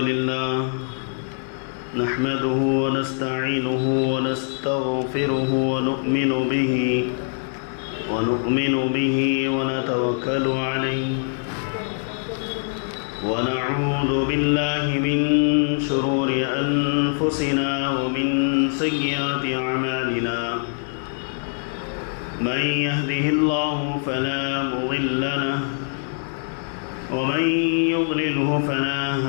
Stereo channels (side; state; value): right; silent; 63 dB below the other